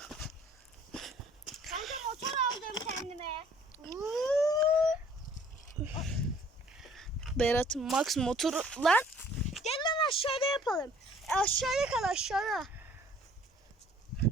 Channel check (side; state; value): both; normal; correlation 0.56